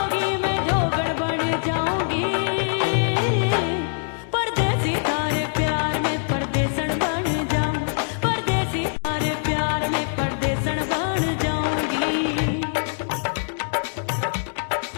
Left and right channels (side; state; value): right; silent; digital silence